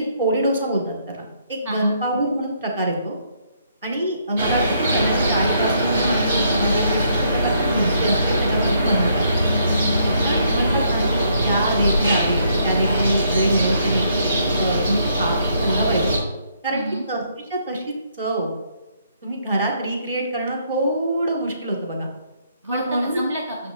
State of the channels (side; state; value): both; inverted; correlation -0.70